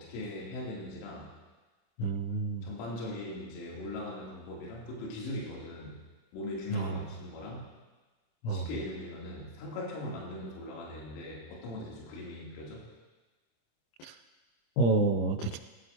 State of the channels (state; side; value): late; right; 26 ms